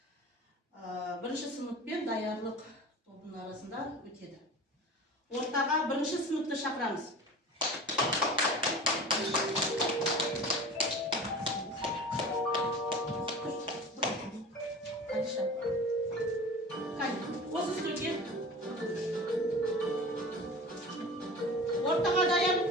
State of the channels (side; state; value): both; normal; correlation 0.36